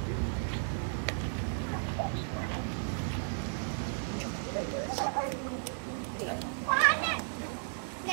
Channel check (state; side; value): silent; left; digital silence